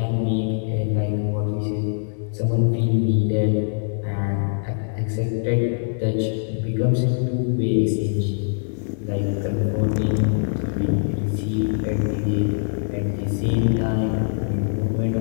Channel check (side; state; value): right; silent; 63 dB below the other